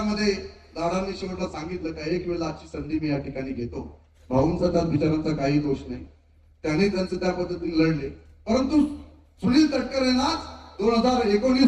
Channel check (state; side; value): identical; both; correlation 1.00